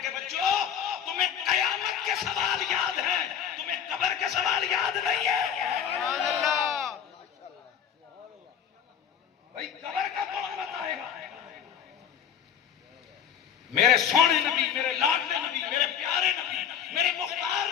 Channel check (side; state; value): right; quieter; 8.5 dB